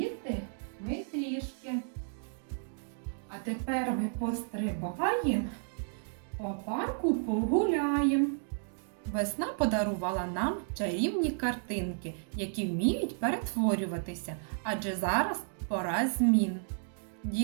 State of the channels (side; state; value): left; silent; digital silence